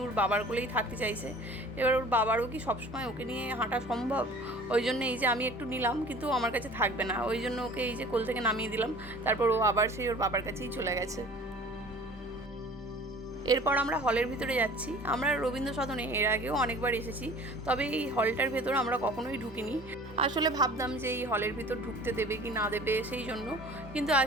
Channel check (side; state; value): both; normal; correlation 0.46